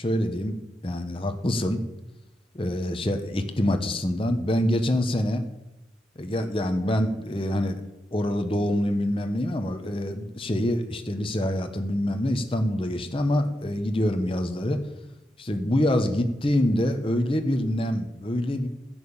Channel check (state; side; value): normal; both; correlation 0.86